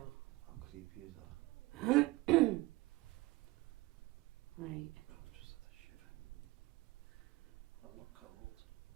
How creepy is that? Right. Oh, just had a shiver. I'm not cold.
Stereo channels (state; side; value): quieter; left; 20.8 dB